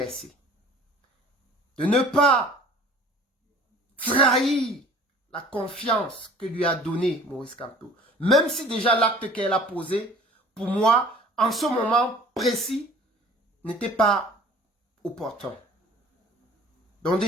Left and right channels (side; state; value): both; normal; correlation 0.48